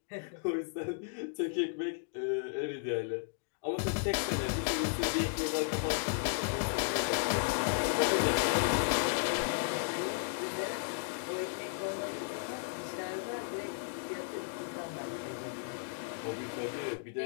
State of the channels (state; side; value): silent; right; digital silence